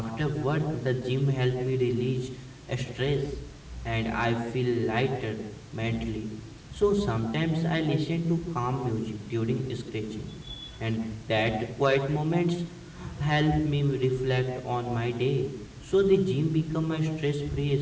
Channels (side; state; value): both; identical; correlation 1.00